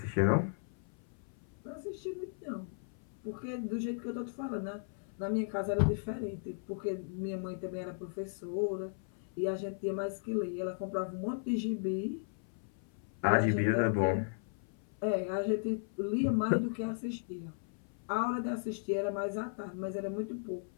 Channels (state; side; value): silent; right; 54 dB below the other